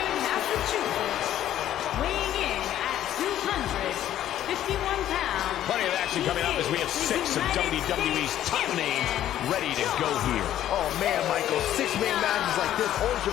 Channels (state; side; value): quieter; right; 11.9 dB